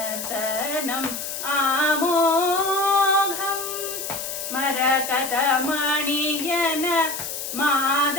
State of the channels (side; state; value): left; noise; hiss, 6 dB below the sound